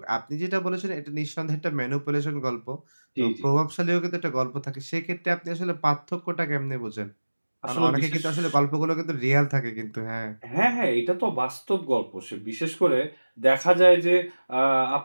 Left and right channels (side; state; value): both; inverted; correlation -1.00